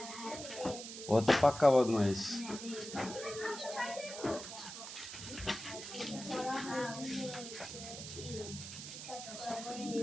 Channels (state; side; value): noise; right; hiss, 10 dB below the sound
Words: ও হচ্ছে পাক্কা বদমাইশ।